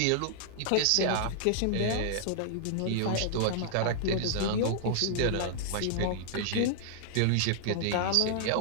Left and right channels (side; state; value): both; different; correlation -0.01